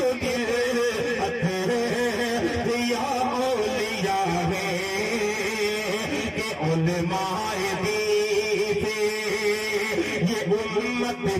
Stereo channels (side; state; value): both; identical; correlation 1.00